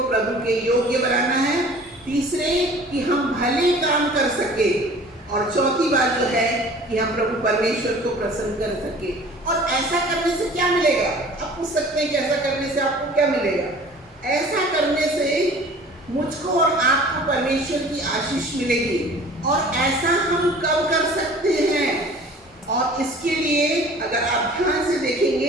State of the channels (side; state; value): both; normal; correlation 0.47